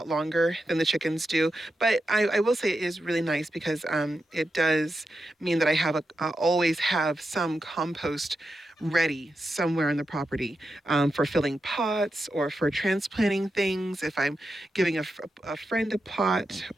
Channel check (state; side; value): normal; both; correlation 0.88